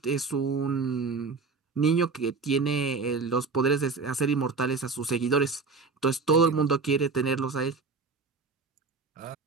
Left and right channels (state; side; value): quieter; left; 4.4 dB